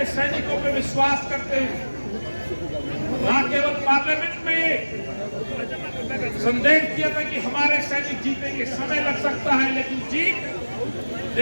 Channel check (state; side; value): inverted; both; correlation -1.00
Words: सैनिकों पर विश्वास करते हुए ना केवल पार्लियामेंट में संदेश दिया था कि हमारे सैनिक जीतेंगे, समय लग सकता है लेकिन जीत